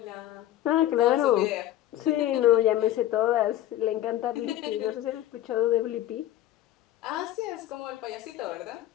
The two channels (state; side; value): quieter; right; 13.4 dB